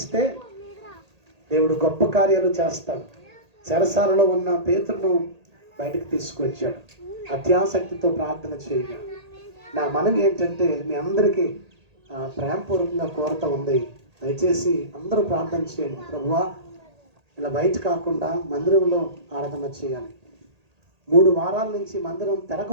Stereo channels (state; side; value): late; left; 1.8 ms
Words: దేవుడు గొప్ప కార్యాలు చేస్తాడు. చెరసాలలో ఉన్న పేతురును బయటకు తీసుకొచ్చాడు. అత్యాసక్తితో ప్రార్థన చేయగా నా మనవి ఏంటంటే మీ అందరికీ ప్రేమపూర్వకంగా కోరత ఉంది. దయచేసి అందరూ ప్రార్థన చేయండి. ప్రభువా, ఇలా బయట కాకుండా మందిరంలో ఆరాధన చేయాలి. 3 వారాల నుంచి మందిరం